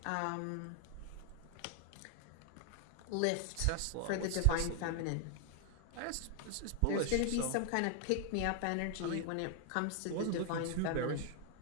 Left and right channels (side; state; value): both; different; correlation 0.00